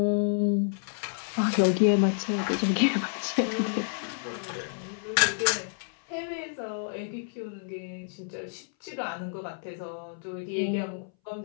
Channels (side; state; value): right; silent; 58 dB below the other